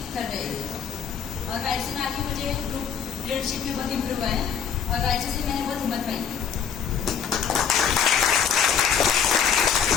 कर रहे हैं। और वायरसे में आके मुझे ग्रुप लीडरशिप में बहुत इम्प्रूव हुआ है और वायरसे से मैंने बहुत हिम्मत पाई।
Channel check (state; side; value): quieter; right; 7.5 dB